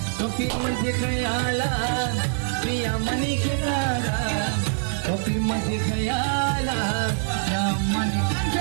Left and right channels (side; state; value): left; silent; digital silence